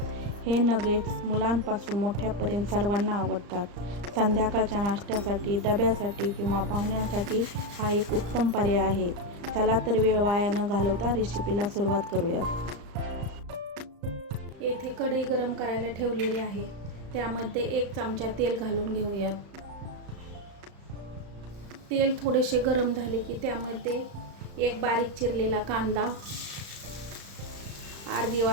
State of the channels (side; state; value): left; late; 35 ms